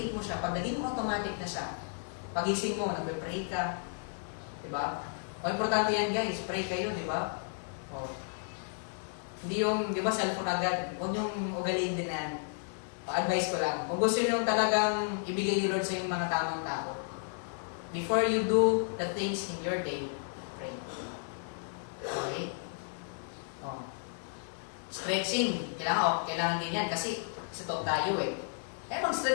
mo siya, pag naging automatic na siya, pagising mo, nagbe-pray ka, di ba? O, importante yan, guys. Pray kayo, di ba? O. Hindi yung, di ba, cellphone agad. Huwag yung ugaliin din na yan. Pa-advise ko lang. Kung gusto nyo talagang ibigay ni Lord sa inyong mga tamang tao, before you do the things in your day, pray. Okay? Oh. Stretching. Kailangan din yan kasi top tayo eh. Kaya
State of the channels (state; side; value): silent; right; 56 dB below the other